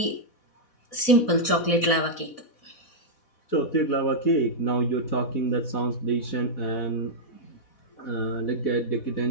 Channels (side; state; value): right; late; 4.1 ms